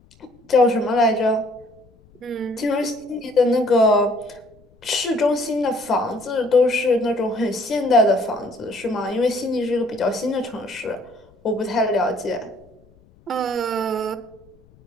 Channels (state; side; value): noise; left; rumble, 29 dB below the sound